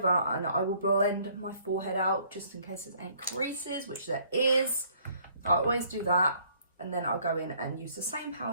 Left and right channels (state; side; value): inverted; both; correlation -0.61